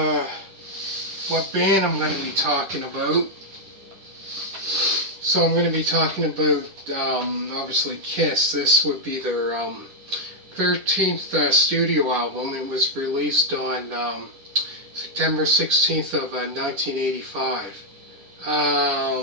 what band I'm going to be talking about. So I'm going to be talking about obviously Kiss. This would be their 13th studio album. It was released on September 16th of 1985.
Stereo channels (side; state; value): left; late; 10 ms